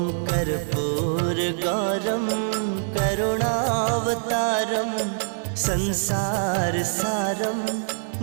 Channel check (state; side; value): silent; left; digital silence